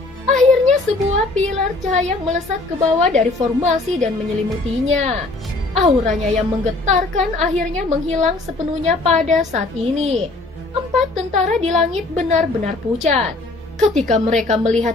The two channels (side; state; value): right; quieter; 3.1 dB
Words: Akhirnya sebuah pilar cahaya melesat ke bawah dari formasi dan menyelimutinya. Auranya yang menggetarkan akhirnya menghilang sepenuhnya pada saat ini. 4 tentara di langit benar-benar pucat. Ketika mereka melihat